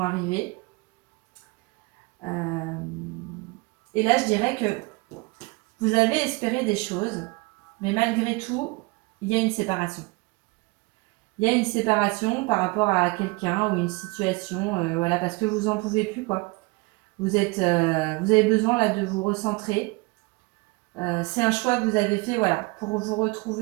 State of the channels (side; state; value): left; quieter; 25.5 dB